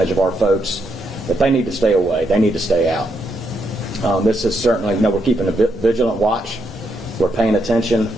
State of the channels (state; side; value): normal; both; correlation 0.79